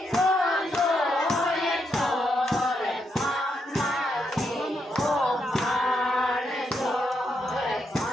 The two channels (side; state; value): both; normal; correlation 0.80